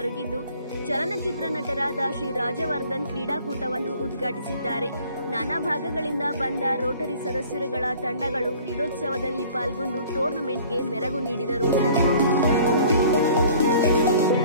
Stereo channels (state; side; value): inverted; both; correlation -0.51